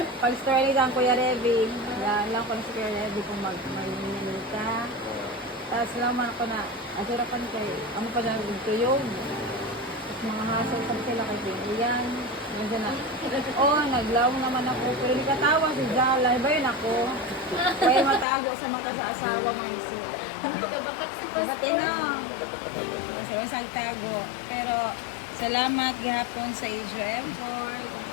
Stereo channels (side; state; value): right; drops out; at 18.2 s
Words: pag-store ni sa Kuya Revi. Lang ko na si Kuya Revi kung mag-minili ka. Tapos laman ako na, asurapan kayo, amo pa na nagtuyog. Tapos mga hassle pa sila kay Pilihan. Nandiyan na, naglaw naman ako. Pero nikatawa si Jala, iba yun ako. Kaya matago sa mata sa asawa man si. Ba't na? Sa wasag tago. Pero salamat gihapon sa Asia Effort.